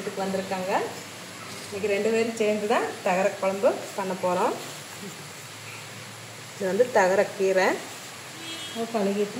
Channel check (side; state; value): both; identical; correlation 1.00